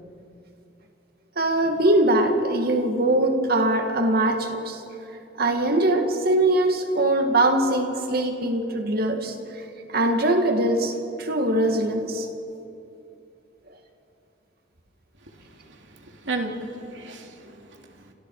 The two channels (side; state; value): both; normal; correlation 0.16